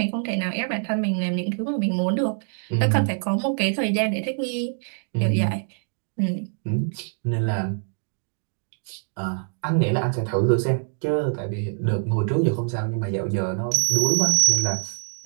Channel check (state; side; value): silent; left; 62 dB below the other